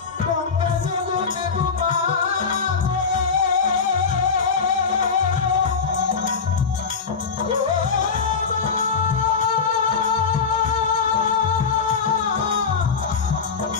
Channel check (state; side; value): quieter; right; 5.5 dB